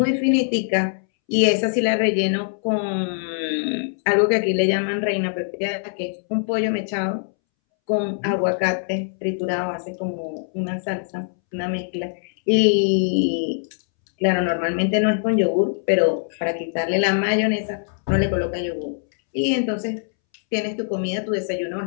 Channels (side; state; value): right; silent; 64 dB below the other